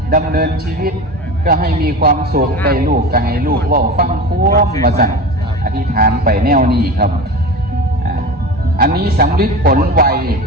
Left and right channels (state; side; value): normal; both; correlation 0.30